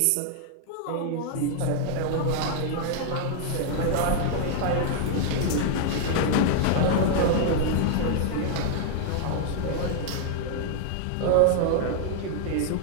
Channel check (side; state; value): both; different; correlation 0.00